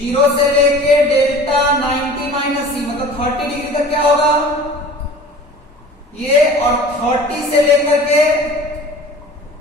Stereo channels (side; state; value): both; normal; correlation 0.43